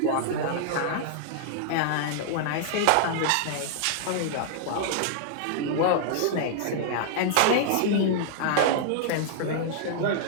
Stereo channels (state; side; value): different; both; correlation -0.01